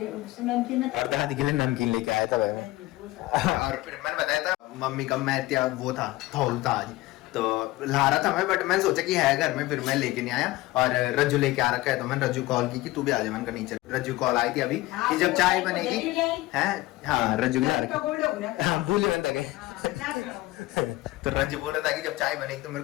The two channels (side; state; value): right; quieter; 18.6 dB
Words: और दादी के लिए नमकीन लेके आया था भाई। और फिर मैंने बताया था मम्मी का मैं वो था थौल था आज, तो ला रहा था मैं, बट मैंने सोचा कि है घर में, फिर मैं लेके नहीं आया। और रज्जू लेके आ रखा है, तो मैंने रज्जू कॉल की कि तू भी आ जा। मैंने कहा नहीं चल। रज्जू कॉल आई थी अभी कि जब चाय बनेगी है। हाँ रज्जू के हाँ भूले बंदा गए। तो रंज बोल रहा था कि जब चाय बनेगी तो मेरे